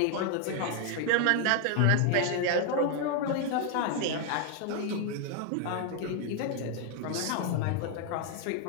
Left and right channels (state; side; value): different; both; correlation 0.00